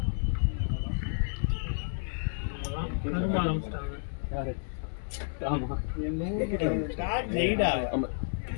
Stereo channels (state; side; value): silent; right; 57 dB below the other